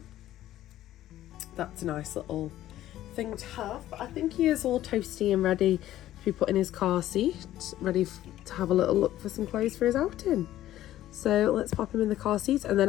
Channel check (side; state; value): right; quieter; 13.6 dB